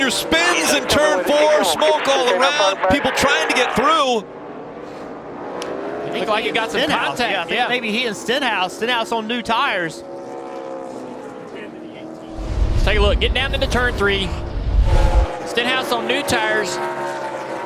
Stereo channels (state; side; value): identical; both; correlation 1.00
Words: spins in turn 4, smoke all around, people trying to get through. Looked like it got some contact. Yeah, maybe he and Stenhouse on new tires. Let's take a look. Get down into turn 3. Stenhouse on new tires.